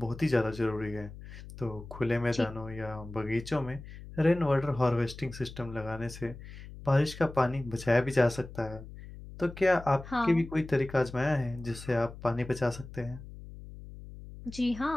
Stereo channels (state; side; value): noise; left; hum, 14 dB below the sound